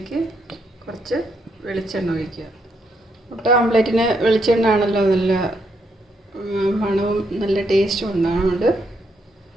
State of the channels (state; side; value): normal; both; correlation 0.76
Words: കുറച്ച് വെളിച്ചെണ്ണ ഒഴിക്കുക. മുട്ട ഓംലെറ്റിന് വെളിച്ചെണ്ണ ആണല്ലോ നല്ല മണവും നല്ല ടേസ്റ്റും ഉണ്ടാകുന്നുണ്ട്.